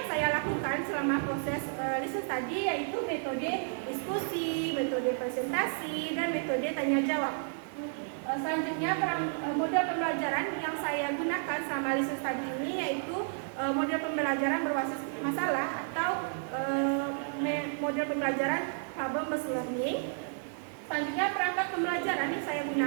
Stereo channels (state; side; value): silent; left; digital silence